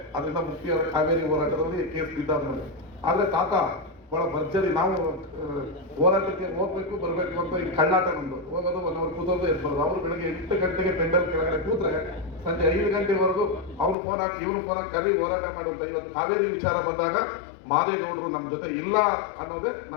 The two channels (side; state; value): right; drops out; at 14.0 s